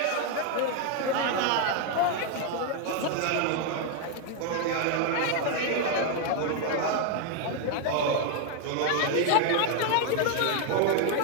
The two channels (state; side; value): different; both; correlation 0.01